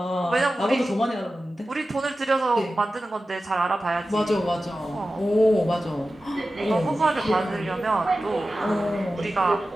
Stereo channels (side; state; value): both; normal; correlation 0.94